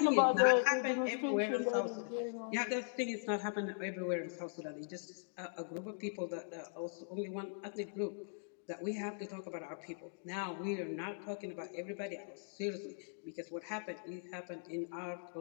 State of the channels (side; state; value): right; silent; digital silence